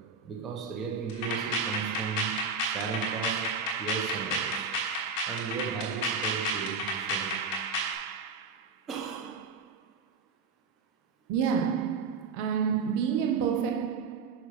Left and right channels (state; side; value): quieter; left; 4.5 dB